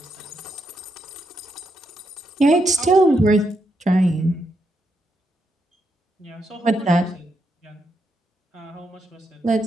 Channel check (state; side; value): normal; both; correlation 0.81